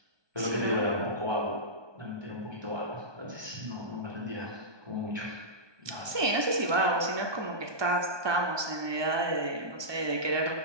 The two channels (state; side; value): late; left; 1.2 ms